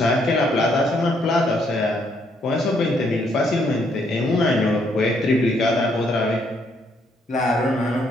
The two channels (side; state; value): both; normal; correlation 0.71